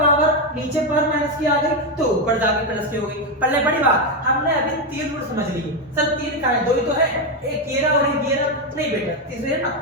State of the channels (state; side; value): normal; both; correlation 0.07